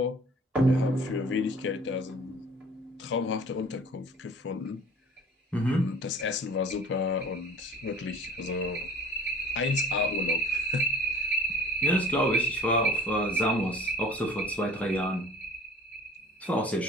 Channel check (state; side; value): normal; both; correlation 0.47